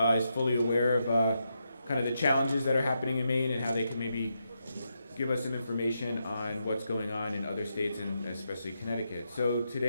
is fully aware of kind of the challenges that are happening in Maine and how they can maybe give us some information on what's going on in other states and especially Connecticut. So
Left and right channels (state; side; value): inverted; both; correlation -0.83